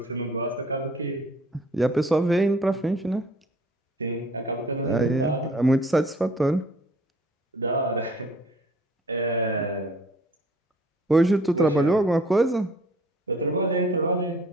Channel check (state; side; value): normal; both; correlation 0.54